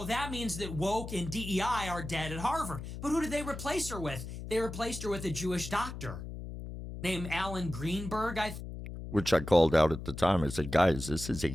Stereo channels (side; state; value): left; noise; hum, 9 dB below the sound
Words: that means that woke and DEI are dead at Harvard. But who did they replace her with? They replaced her with a Jewish doctor named Alan Greenberg, which I called out at the time. I said, guys, this is